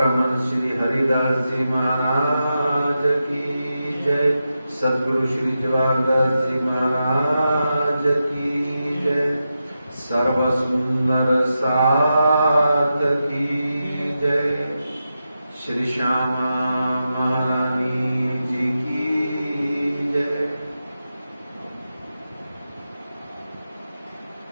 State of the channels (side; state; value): both; inverted; correlation -0.89